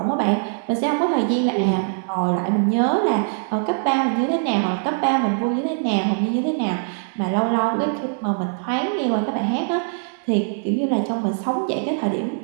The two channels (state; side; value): silent; left; digital silence